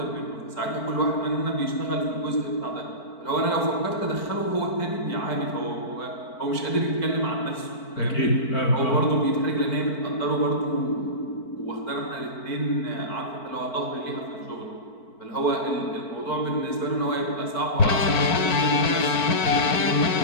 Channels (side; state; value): right; late; 4.5 ms